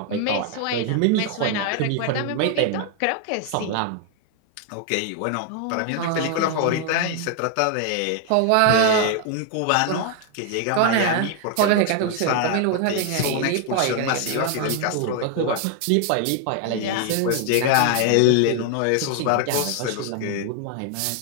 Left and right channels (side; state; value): both; different; correlation 0.00